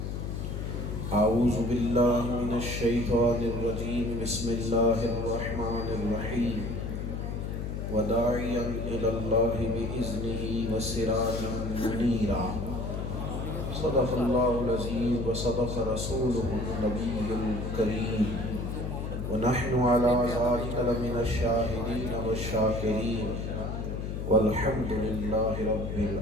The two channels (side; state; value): left; noise; hum, 4 dB below the sound